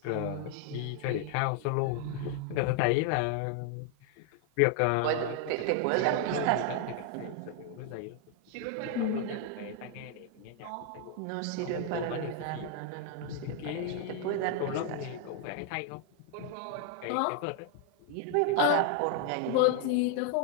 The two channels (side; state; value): both; different; correlation 0.00